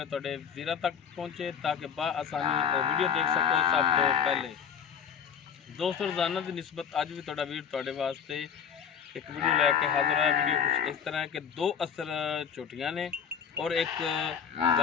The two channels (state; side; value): quieter; right; 7.5 dB